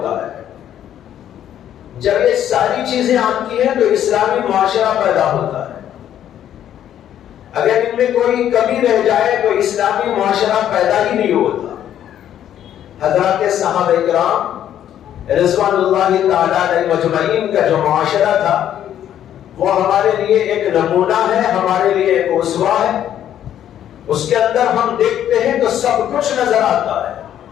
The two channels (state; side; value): quieter; right; 10.7 dB